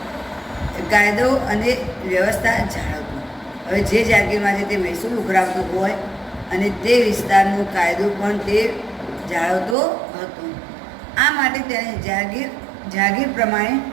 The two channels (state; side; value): drops out; left; at 9.8 s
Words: અને વ્યવસ્થા જાળવતો. હવે જે જાગીરમાંથી તે મહેસૂલ ઉઘરાવતો હોય અને તે વિસ્તારનો કાયદો પણ તે જાળવતો હતો. આ માટે તેને જાગીર પ્રમાણે